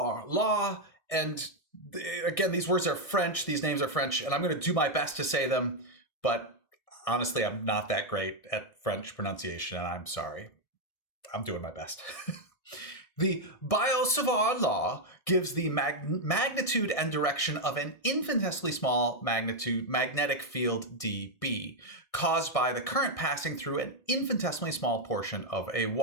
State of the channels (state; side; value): late; right; 1.6 ms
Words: law, and again, these words are French, these names are French, and I'm going to do my best to say them, but honestly, I'm not that great at French pronunciation, and I'm sorry. I'm doing my best. The Biot-Savart law gives the magnitude and direction of an infinitesimally small magnetic field dB, caused by the current passing through an infinitesimally small portion of a